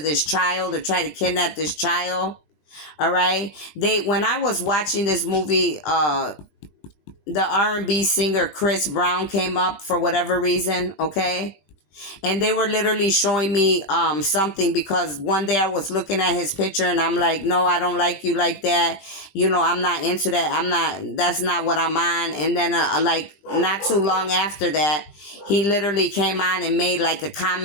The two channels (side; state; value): right; late; 21 ms